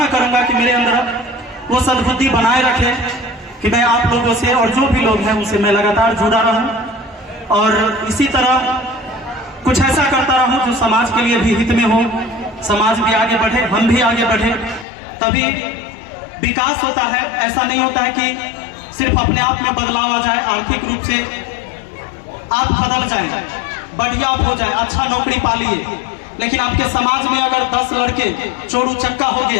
करूंगा कि मेरे अंदर वो सद्बुद्धि बनाए रखे कि मैं आप लोगों से और जो भी लोग हैं उनसे मैं लगातार जुड़ा रहूं और इसी तरह कुछ ऐसा करता रहूं जो समाज के लिए भी हित में हो, समाज भी आगे बढ़े, हम भी आगे बढ़े, तभी विकास होता है। ऐसा नहीं होता है कि सिर्फ अपने आप में बदलाव आ जाए, आर्थिक रूप से आप बदल जाए, बढ़िया आप हो जाए, अच्छा नौकरी पालिए, लेकिन आपके समाज में अगर 10 लड़के चोरू चक्का हो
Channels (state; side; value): drops out; right; at 14.9 s